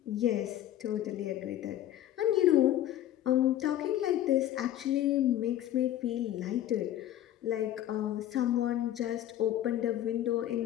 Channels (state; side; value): quieter; right; 12.4 dB